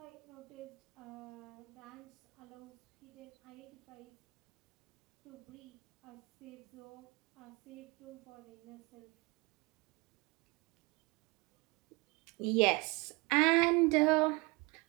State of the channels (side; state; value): left; quieter; 26.6 dB